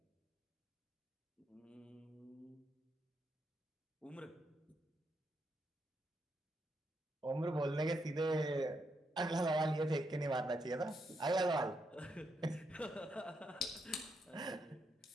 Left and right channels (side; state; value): both; normal; correlation 0.80